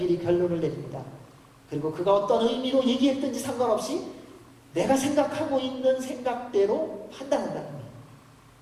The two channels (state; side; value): identical; both; correlation 1.00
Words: 결론을 내립니다. 그리고 그가 어떤 의미로 얘기했든지 상관없이 내가 생각하고 있는 생각대로 판단한다는 거예요.